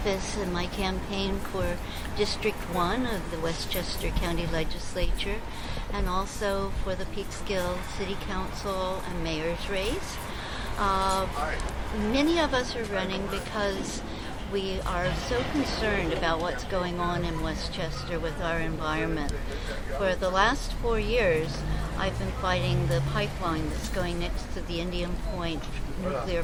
and my campaign for District 1 of the Westchester County Legislature, and also for the Peekskill City Council and Mayor's race. Many of us are running because we are so concerned about what's going on in Westchester with our environment. For the last 4 years, I've been fighting the pipeline that's going next to the Indian Point nuclear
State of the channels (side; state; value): both; identical; correlation 1.00